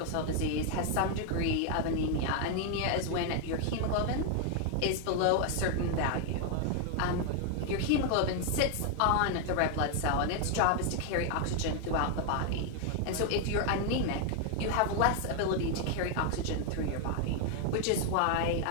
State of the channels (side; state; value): both; different; correlation 0.00